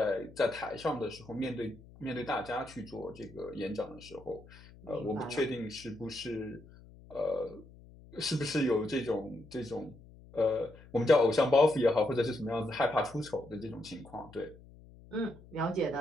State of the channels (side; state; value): left; noise; hum, 21 dB below the sound